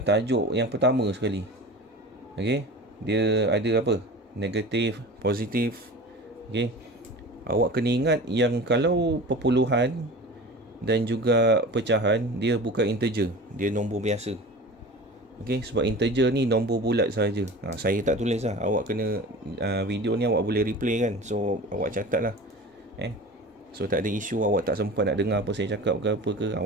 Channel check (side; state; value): both; normal; correlation 0.36